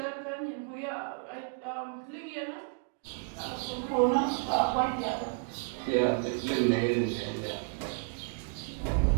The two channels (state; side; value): quieter; left; 38.2 dB